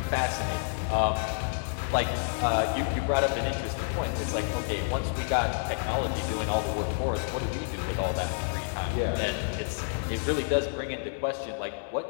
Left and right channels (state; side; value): silent; right; 58 dB below the other